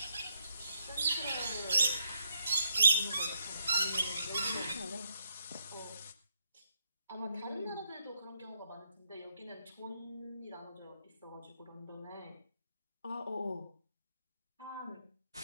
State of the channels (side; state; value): both; inverted; correlation -0.78